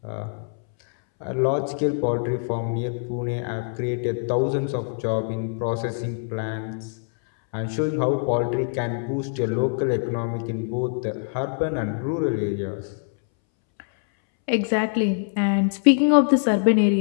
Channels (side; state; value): right; silent; 63 dB below the other